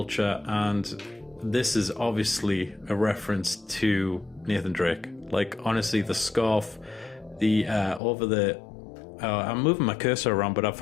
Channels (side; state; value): right; drops out; at 8.0 s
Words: and this is obviously a reference to Nathan Drake. Like, honestly, the scarf, the I'm moving my cursor around, but I